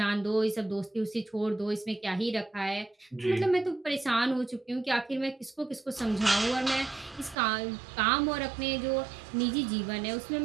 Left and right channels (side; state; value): left; drops out; at 7.4 s